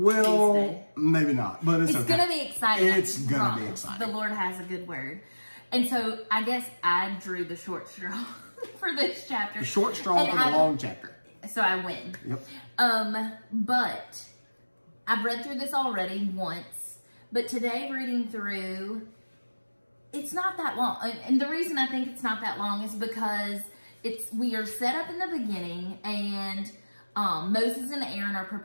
Maybe not, but it's okay. It's going to be exciting. It's going to be exciting. The Lord has a good word. And so I guess I drew the short straw for this chapter. The short straw for the long chapter. So I win. Yep. But I've read through this already once, but today reading through, it's not that long. And the reason I think it's not that long is because we are set up in the beginning, and Moses and Aaron are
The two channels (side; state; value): both; inverted; correlation -1.00